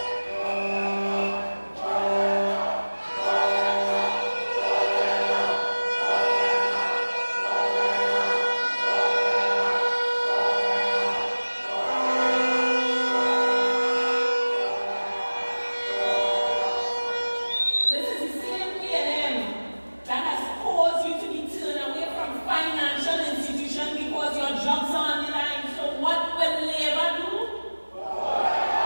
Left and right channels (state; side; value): inverted; both; correlation -1.00